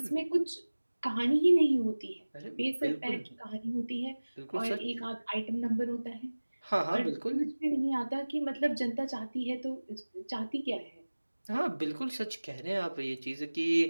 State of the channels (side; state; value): both; inverted; correlation -1.00